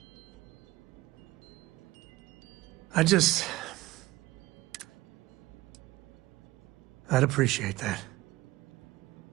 I'd appreciate that.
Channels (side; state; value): left; quieter; 18.3 dB